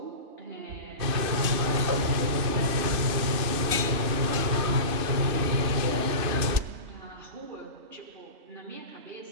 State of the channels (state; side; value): late; left; 2.6 ms